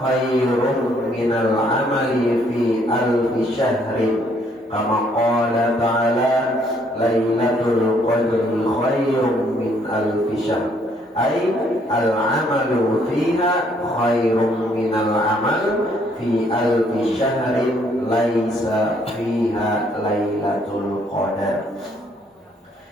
minal amali fi alfi syahrin kama qala ta'ala lailatul qadri khairun min alfi syahr, ay al-amalu fiha khairun minal amal fi alfi syahrin laisa fiha lailatul qadar,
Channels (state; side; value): normal; both; correlation 0.67